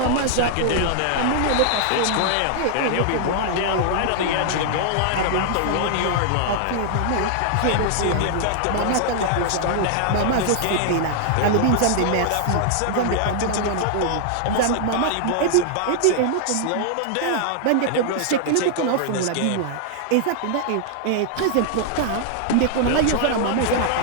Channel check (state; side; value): different; both; correlation -0.01